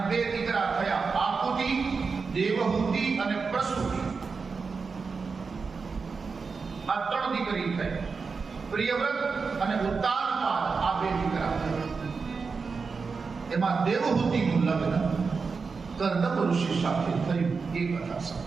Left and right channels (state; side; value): quieter; left; 4.9 dB